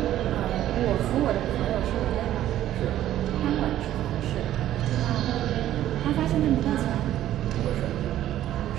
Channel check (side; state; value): left; quieter; 12.7 dB